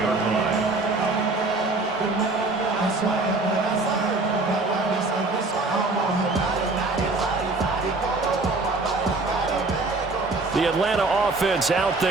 line. The Atlanta offense out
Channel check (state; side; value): quieter; left; 3.4 dB